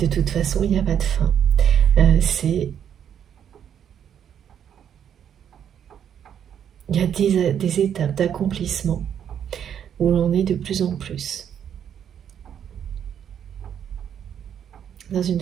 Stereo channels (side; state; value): left; quieter; 8.9 dB